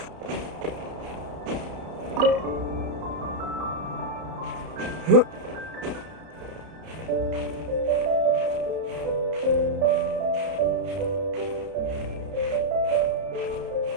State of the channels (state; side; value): late; left; 31 ms